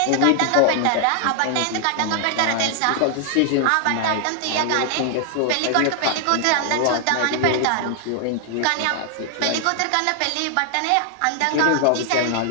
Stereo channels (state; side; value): different; both; correlation 0.00